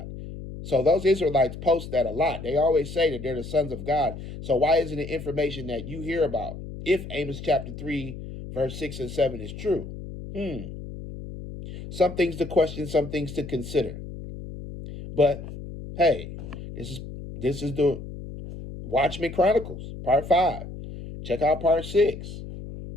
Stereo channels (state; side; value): noise; left; hum, 11 dB below the sound